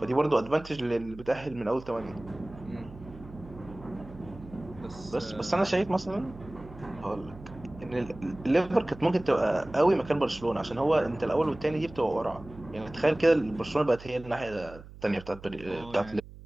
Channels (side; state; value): right; noise; hum, 17 dB below the sound